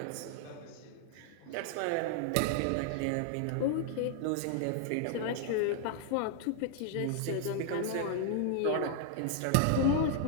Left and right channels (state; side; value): different; both; correlation 0.00